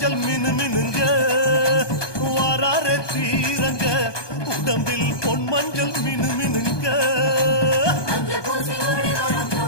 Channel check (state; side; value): late; right; 1.2 ms